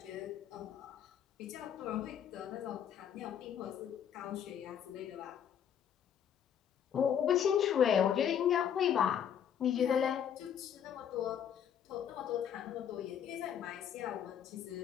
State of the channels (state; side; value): quieter; right; 8.9 dB